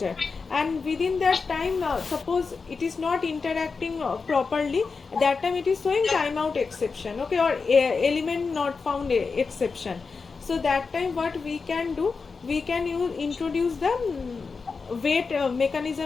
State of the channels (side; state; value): right; quieter; 4.8 dB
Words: and within that time suppose it is not interacting properly, that time it is showing timeout exception. Okay, or element not found exception. So that time what we can do, we can introduce the wait